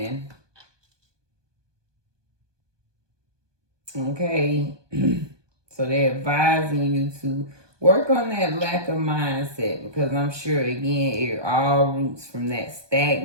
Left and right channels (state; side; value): late; left; 1.2 ms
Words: Okay. So they're advising you to work on that lack of mindset, because I'm sure, again, it all roots from that